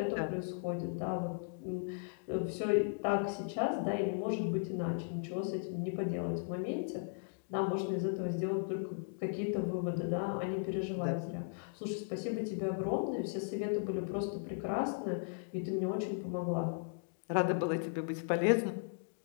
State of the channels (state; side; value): silent; right; digital silence